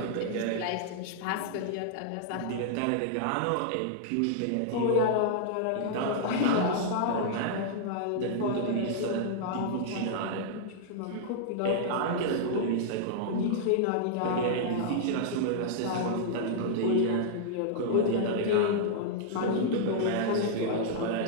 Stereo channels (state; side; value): different; both; correlation -0.01